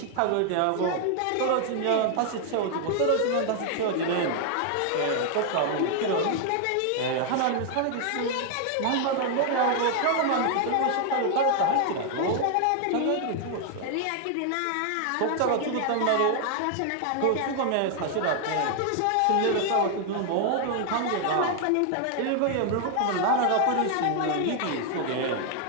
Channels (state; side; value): different; both; correlation 0.00